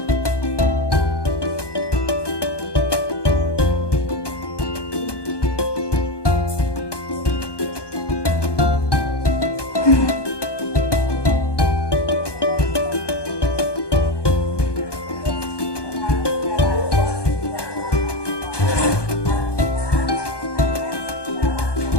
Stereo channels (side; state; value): right; late; 1.2 ms